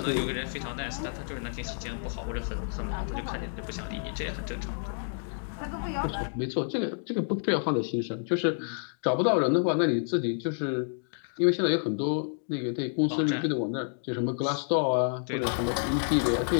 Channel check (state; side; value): silent; right; digital silence